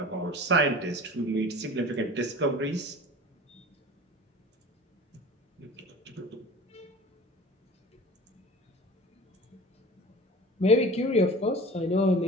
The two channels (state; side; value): normal; both; correlation 0.40